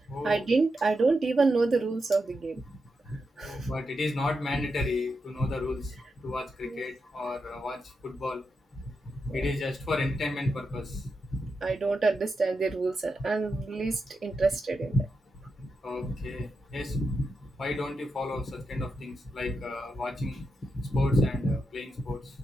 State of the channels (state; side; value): normal; both; correlation 0.86